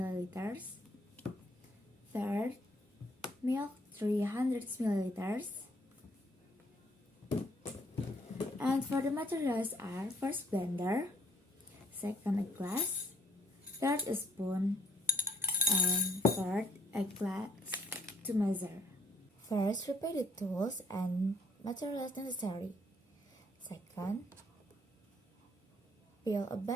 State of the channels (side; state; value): both; normal; correlation 0.66